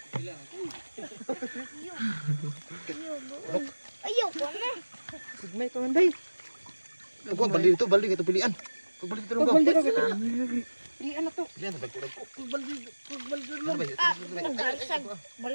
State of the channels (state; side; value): inverted; both; correlation -1.00